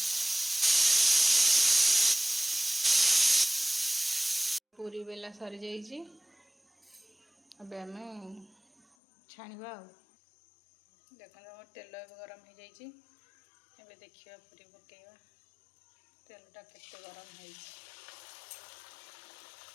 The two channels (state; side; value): drops out; right; at 8.8 s